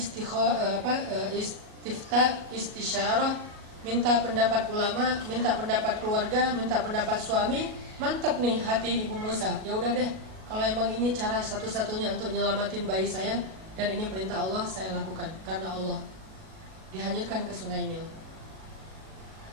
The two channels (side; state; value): left; late; 38 ms